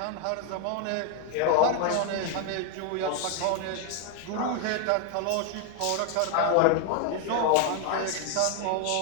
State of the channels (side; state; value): both; different; correlation 0.01